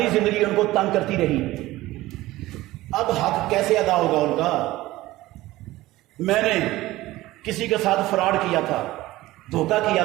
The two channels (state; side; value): quieter; left; 17.5 dB